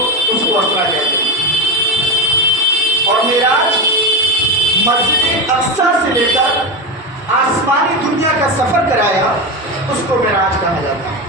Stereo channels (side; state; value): both; normal; correlation 0.17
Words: اس کو اسرا کہتے ہیں۔ اور معراج مسجد اقصی سے لے کر آسمانی دنیا کا سفر کرایا، اس کو معراج کہا جاتا ہے۔